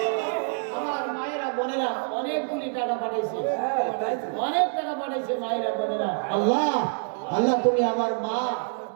আমার মায়েরা বোনেরা অনেকগুলি টাকা পাঠাইছে, অনেক টাকা পাঠাইছে মায়েরা বোনেরা। আল্লাহ আল্লাহ তুমি আমার মা,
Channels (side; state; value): left; silent; 61 dB below the other